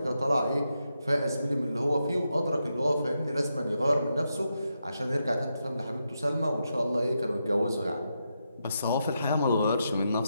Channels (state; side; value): inverted; both; correlation -0.85